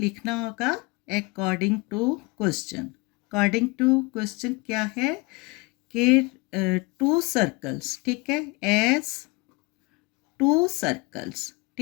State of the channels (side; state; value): right; quieter; 26.1 dB